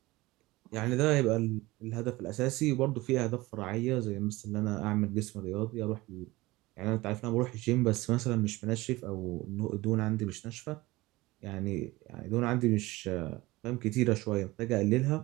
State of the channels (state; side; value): quieter; left; 20.1 dB